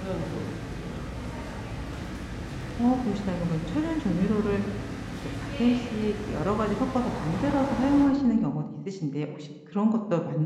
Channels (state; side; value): identical; both; correlation 1.00